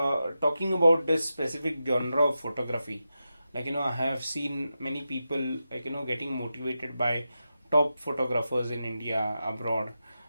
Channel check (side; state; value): both; inverted; correlation -0.90